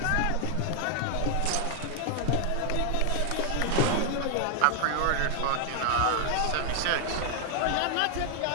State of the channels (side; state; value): both; different; correlation 0.00